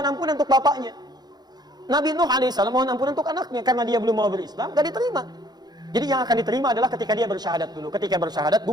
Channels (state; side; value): late; left; 0.20 ms